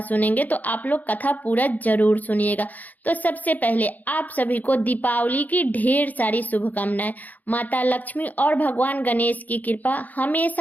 सुनेंगे, तो आप लोग कथा पूरा जरूर सुनिएगा। तो सबसे पहले आप सभी को दीपावली की ढेर सारी शुभकामनाएं। माता लक्ष्मी और भगवान गणेश की कृपा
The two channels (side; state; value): right; late; 0.081 ms